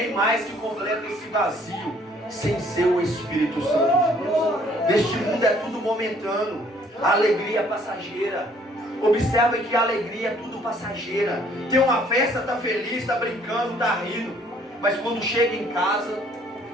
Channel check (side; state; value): both; normal; correlation 0.61